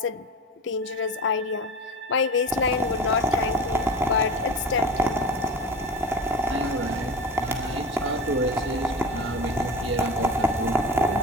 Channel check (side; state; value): both; normal; correlation 0.31